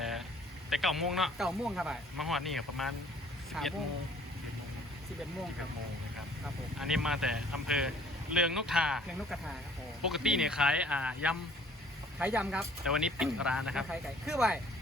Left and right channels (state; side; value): normal; both; correlation 0.56